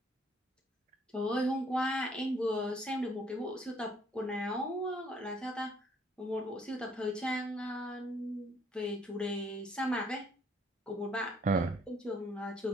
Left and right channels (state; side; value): normal; both; correlation 0.64